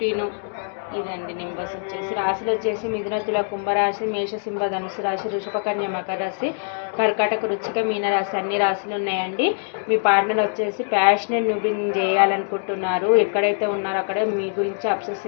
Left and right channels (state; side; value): silent; right; digital silence